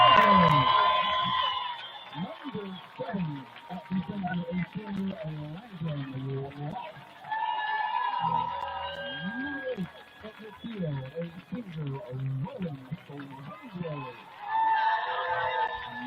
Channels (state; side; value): identical; both; correlation 1.00